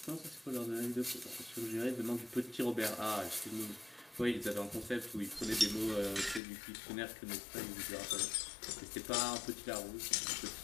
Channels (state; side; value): drops out; right; at 6.4 s